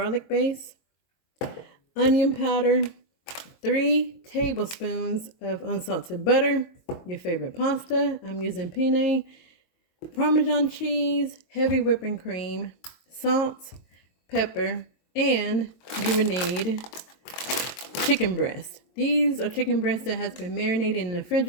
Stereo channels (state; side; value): late; right; 22 ms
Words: base, onion powder, 3 tablespoons of unsalted butter, your favorite pasta. I'm using penne, Parmesan cheese, heavy whipping cream, salt, pepper, and you would need chicken breast. These are chicken breasts that has been marinated in the